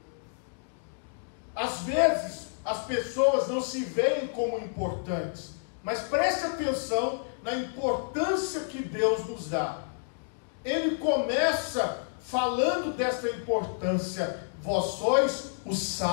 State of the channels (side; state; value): right; silent; digital silence